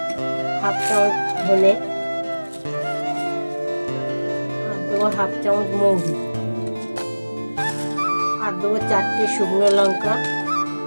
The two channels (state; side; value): inverted; both; correlation -1.00